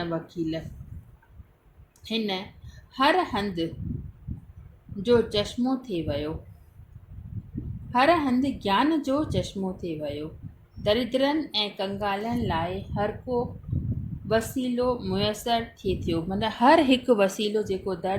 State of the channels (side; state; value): both; identical; correlation 1.00